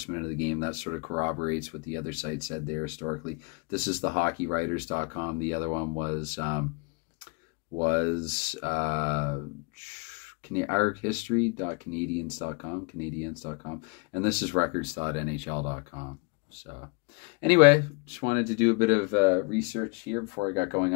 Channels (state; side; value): quieter; right; 31.3 dB